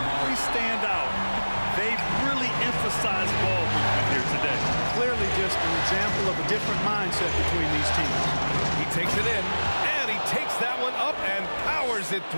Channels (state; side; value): inverted; both; correlation -1.00